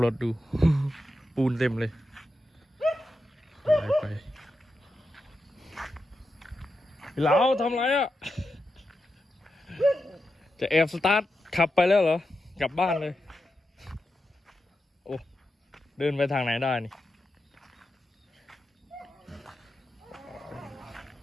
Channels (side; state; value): both; normal; correlation 0.88